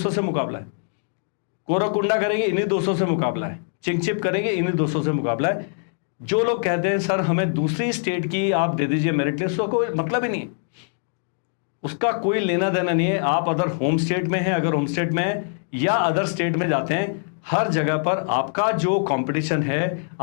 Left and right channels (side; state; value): right; silent; digital silence